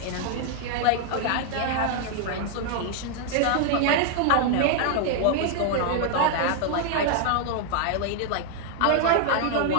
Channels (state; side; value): different; both; correlation 0.00